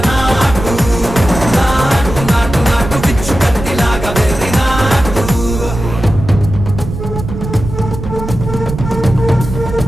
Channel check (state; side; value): noise; right; rumble, 8 dB below the sound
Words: నాటు నాటు నాటు నాటు పిచ్చు కత్తిలాగా వెర్రి నాటు